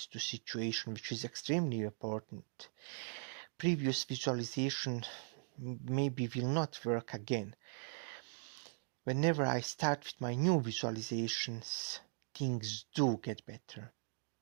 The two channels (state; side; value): silent; left; digital silence